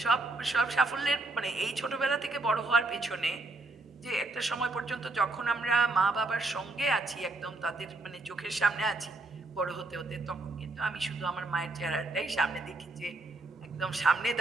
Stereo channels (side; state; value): left; quieter; 3.1 dB